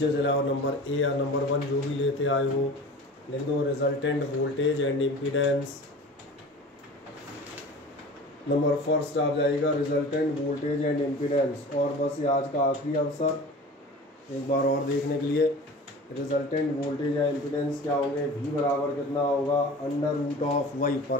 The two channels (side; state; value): both; normal; correlation 0.38